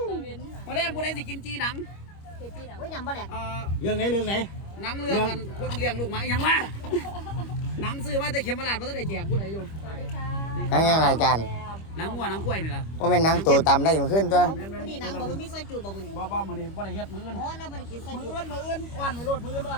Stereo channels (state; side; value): late; right; 25 ms